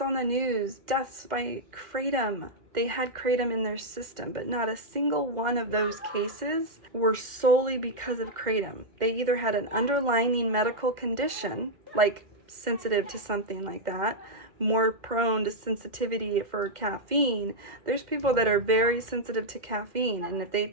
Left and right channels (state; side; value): late; left; 2.1 ms